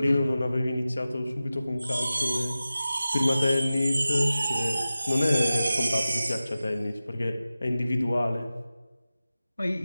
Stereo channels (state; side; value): inverted; both; correlation -0.95